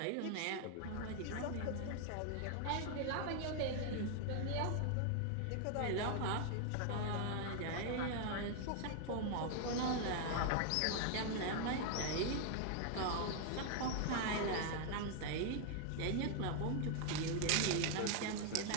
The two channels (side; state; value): both; different; correlation 0.00